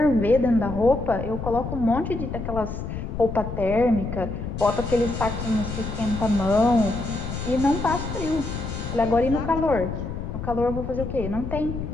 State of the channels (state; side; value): noise; left; rumble, 6 dB below the sound